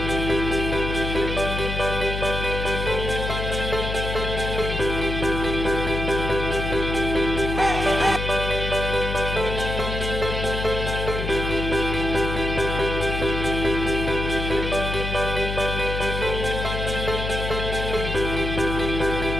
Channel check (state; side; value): noise; left; hum, 3 dB below the sound